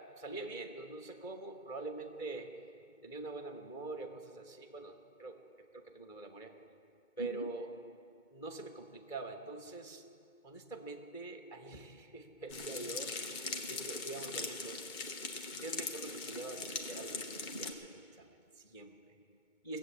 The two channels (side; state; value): right; late; 2.2 ms